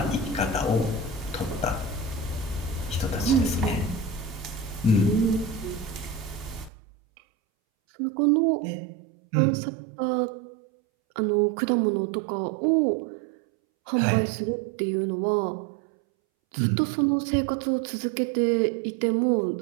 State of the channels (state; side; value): drops out; left; at 6.7 s